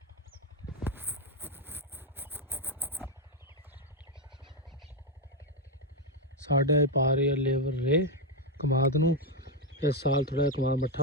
ਸਾਡੇ ਪਾ ਰਹੇ ਲੇਬਰ ਰੇ ਕਮਾਦ ਨੂੰ ਇਸ ਸਾਲ ਥੋੜਾ ਕਮਾਦ ਮੱਠਾ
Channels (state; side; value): normal; both; correlation 0.04